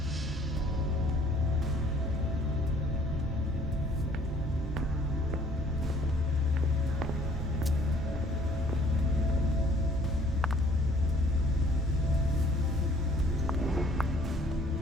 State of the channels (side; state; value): both; normal; correlation 0.58